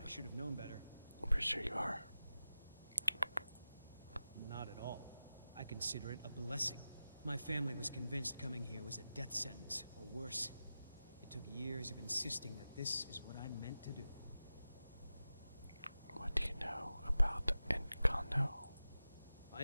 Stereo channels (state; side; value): inverted; both; correlation -0.94